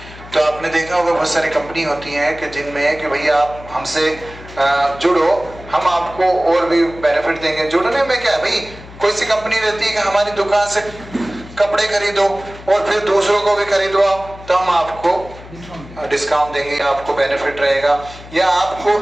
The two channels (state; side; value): noise; left; hum, 17 dB below the sound